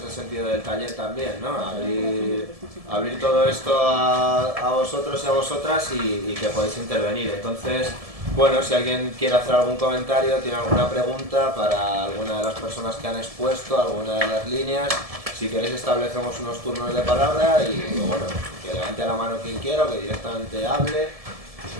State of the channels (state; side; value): late; left; 1.7 ms